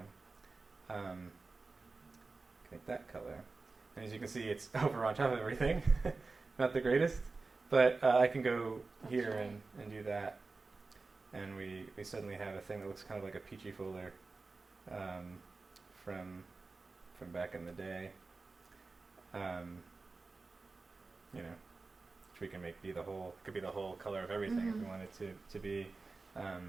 Make that color. And as you can see, it's over on top of everything. Not the greatest. But I can go here and do that. And we suddenly have a thing that looks kind of like a peachy folder from back in the day. Which we can make be the whole, could be the whole color of everything if we want it to be.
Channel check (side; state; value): left; quieter; 3.9 dB